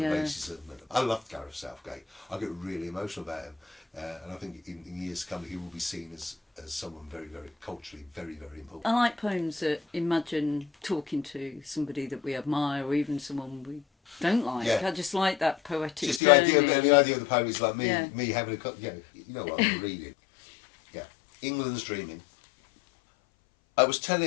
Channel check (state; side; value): drops out; right; at 16.2 s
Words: racism. I loved Gareth Southgate. I get really emotional about him, and I think in years to come he will be seen as someone very, very culturally very, very important. I like poems that imagine talking to somebody that we admire, or even someone we don't like. I just like that poetic. Just the idea of the poem is like me having a you know what I'm reading. Yeah, England's Dreaming. I was